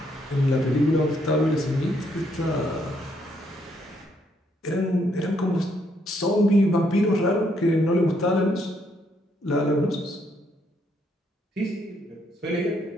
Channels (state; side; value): normal; both; correlation 0.73